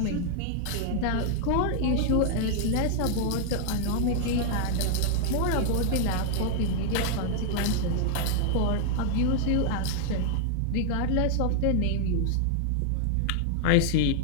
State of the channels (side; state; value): both; different; correlation 0.00